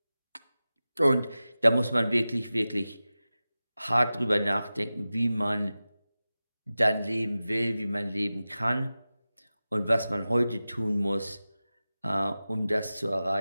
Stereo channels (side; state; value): both; inverted; correlation -0.95